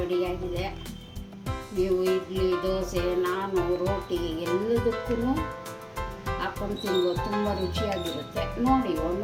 ನೀವು ಇಡ್ಲಿ, ದೋಸೆ, ನಾನು ರೋಟಿ ಎಲ್ಲದಕ್ಕೂ ಹಾಕೊಂಡು ತಿನ್ಬೋದು. ತುಂಬ ರುಚಿಯಾಗಿರುತ್ತೆ. ನೋಡಿ,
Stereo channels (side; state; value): both; identical; correlation 1.00